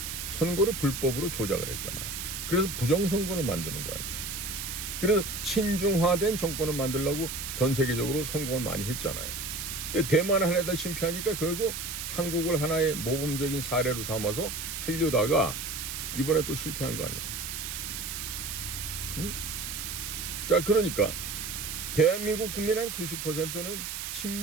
선거를 불법으로 조작을 했잖아. 그래서 부정선거를 만드는 거 아니에요. 그래서 친중화된 정권을 만들려고 전 세계적으로 성공을 많이 했잖아요. 근데 대만을 하려다 실패하니까 결국 한국을 하나의 모범적인 사례로 삼아서 하려다가 이번에 또 실패한 거 아니에요. 자, 그러니까 대한민국 국민의 한 90%는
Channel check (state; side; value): noise; right; hiss, 5 dB below the sound